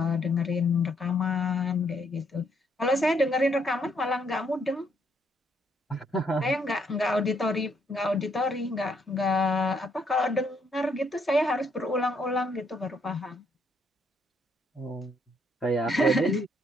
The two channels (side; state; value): both; normal; correlation 0.71